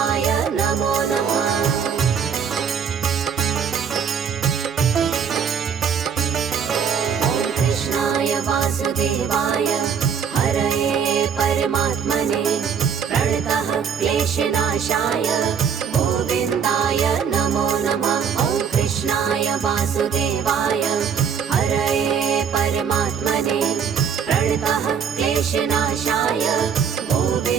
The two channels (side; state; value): left; quieter; 7.1 dB